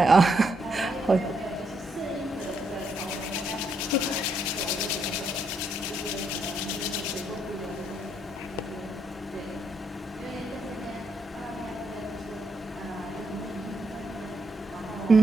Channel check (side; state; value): both; normal; correlation 0.77